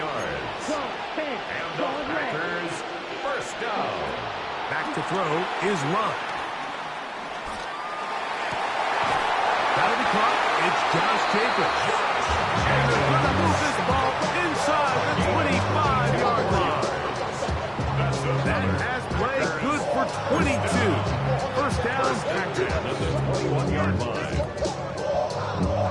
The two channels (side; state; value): both; identical; correlation 1.00